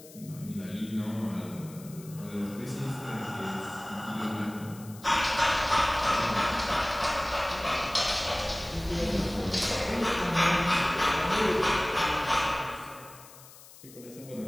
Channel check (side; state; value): left; noise; hiss, 20 dB below the sound